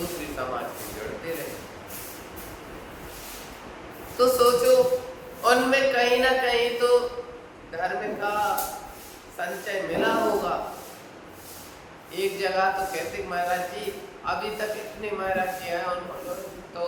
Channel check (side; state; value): both; identical; correlation 1.00